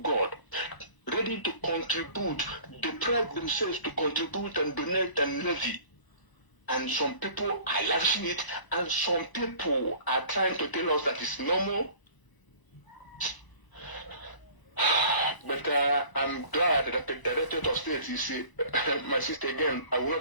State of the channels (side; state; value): right; late; 1.0 ms